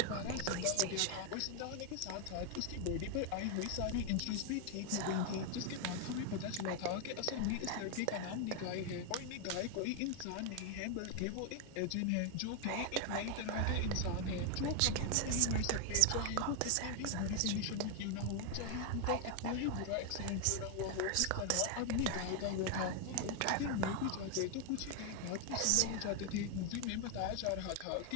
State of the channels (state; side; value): different; both; correlation 0.01